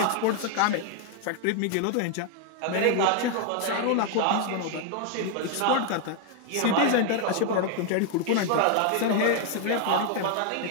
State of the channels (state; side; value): different; both; correlation 0.00